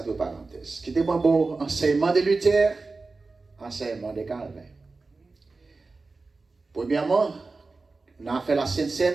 deux parenthèses. Qui était bon enseignement de Luther, enseignement de Calvin. Premièrement, on a fait la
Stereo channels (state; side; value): quieter; left; 3.8 dB